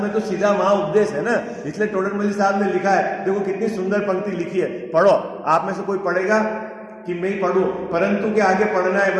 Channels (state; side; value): identical; both; correlation 1.00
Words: तो सीधा वहां उपदेश है ना, इसलिए टोडरमल्ली साहब ने लिखा है। देखो कितनी सुंदर पंक्ति लिखी है, पढ़ो। आप में से कोई पढ़ेगा कि मैं ही पढ़ूं? परंतु के आगे पढ़ना है,